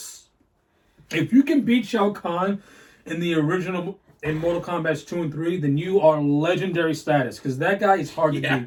If you can beat Shao Kahn in the original, in Mortal Kombat 2 and 3, then you are legendary status. Because that guy is hard to beat.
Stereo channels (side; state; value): both; identical; correlation 1.00